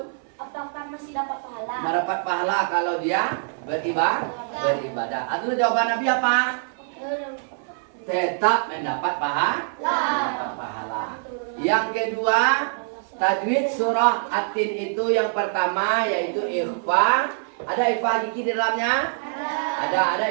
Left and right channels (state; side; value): silent; left; 58 dB below the other